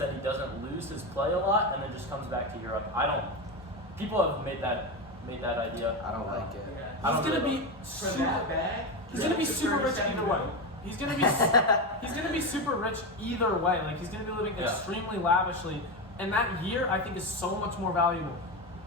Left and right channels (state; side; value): normal; both; correlation 0.15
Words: he doesn't lose his play a lot, and then just comes back to Europe. People have made that idea. I don't like it. Yeah. I don't He's gonna really be For super. that bag, He's gonna be for super rich 37 either way. million. He's gonna be super rich either way. Like he's gonna be living Yeah. extremely lavishly, and that year I think is so much more valuable.